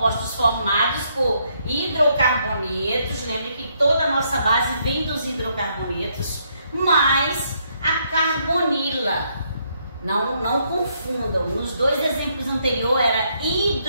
formados por hidrocarbonetos. Lembre que toda a nossa base vem dos hidrocarbonetos, mais a carbonila. Não confundam. Nos 2 exemplos anteriores era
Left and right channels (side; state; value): both; inverted; correlation -0.73